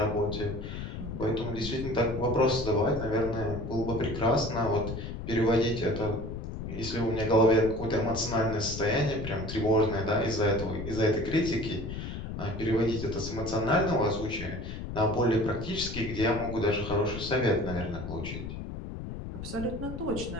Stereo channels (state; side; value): noise; left; rumble, 7 dB below the sound